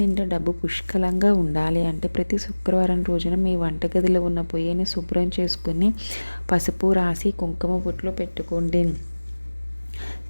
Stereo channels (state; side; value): inverted; both; correlation -1.00